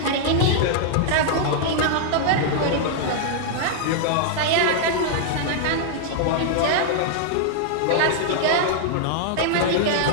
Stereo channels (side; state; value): both; different; correlation -0.01